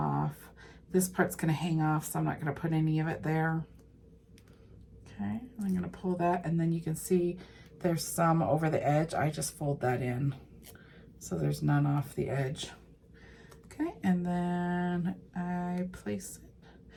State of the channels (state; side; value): identical; both; correlation 1.00